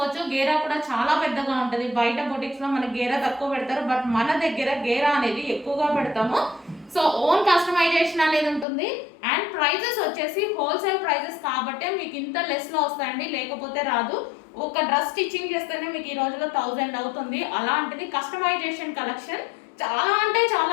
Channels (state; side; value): drops out; right; at 8.7 s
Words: గేరా కూడా చాలా పెద్దగా ఉంటుంది. బయట బొటిక్స్ లో మనకి గేరా తక్కువ పెడతారు, బట్ మన దగ్గర గేరా అనేది ఎక్కువగా పెడతాము. సో ఓన్ కస్టమైజేషన్ అనేది ఉంటుంది. అండ్ ప్రైజెస్ వచ్చేసి హోల్సేల్ ప్రైజెస్ కాబట్టే మీకు ఇంత లెస్ లో వస్తాయండి, లేకపోతే రాదు. ఒక డ్రెస్ స్టిచ్చింగ్ చేస్తేనే మీకు ఈ రోజులో 1000 అవుతుంది. అలాంటిది కస్టమైజేషన్ కలెక్షన్ చాలా అంటే